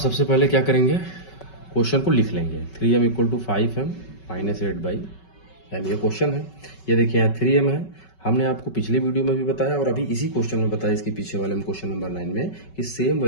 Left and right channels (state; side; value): late; right; 5.3 ms